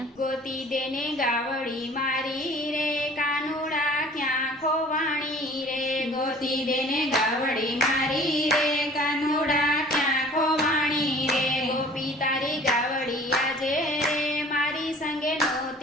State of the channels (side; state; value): both; normal; correlation 0.48